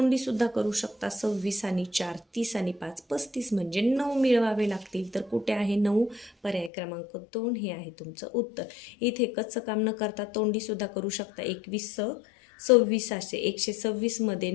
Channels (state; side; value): drops out; right; at 6.7 s